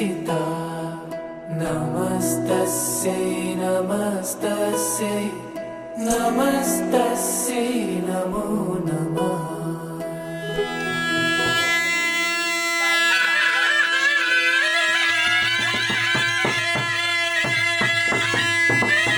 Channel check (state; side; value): identical; both; correlation 1.00